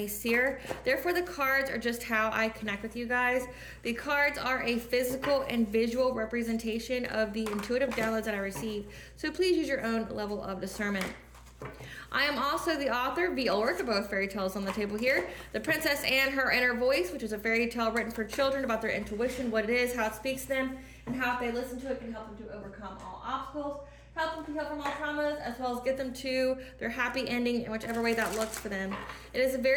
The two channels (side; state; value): both; identical; correlation 1.00